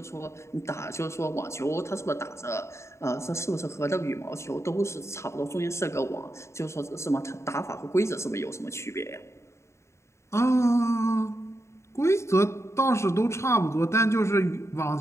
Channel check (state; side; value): late; right; 0.13 ms